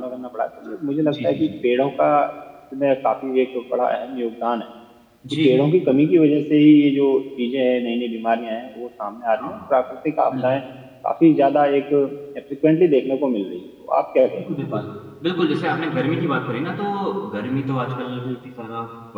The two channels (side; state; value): both; identical; correlation 1.00